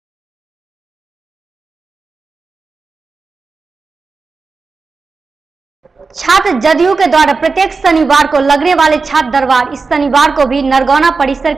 छात्र जदयू के द्वारा प्रत्येक शनिवार को लगने वाले छात्र दरबार इस शनिवार को भी नरगौना परिसर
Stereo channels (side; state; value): left; quieter; 4.4 dB